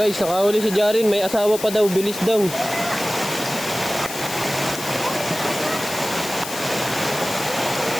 nakahuli si Jarin. May asawa pa daw. Bilis daw.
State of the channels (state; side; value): noise; left; hiss, 9 dB below the sound